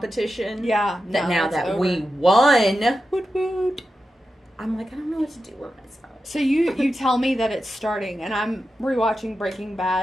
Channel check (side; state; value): both; normal; correlation 0.90